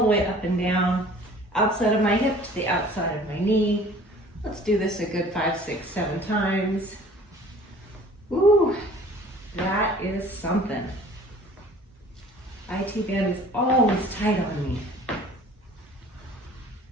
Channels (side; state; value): both; normal; correlation 0.49